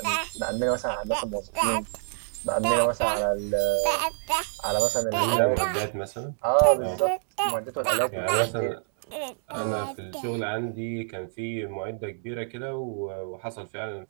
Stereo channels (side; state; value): left; silent; digital silence